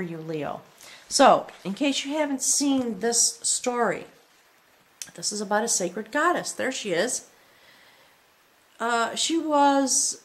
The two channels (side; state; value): both; identical; correlation 1.00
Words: you, Leo. So, in case you haven't seen this story, this is about a sacred goddess. There she is. She was